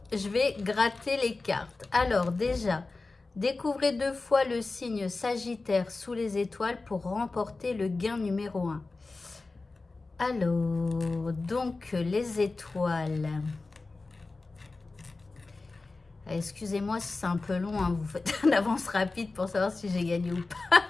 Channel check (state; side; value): quieter; right; 3.6 dB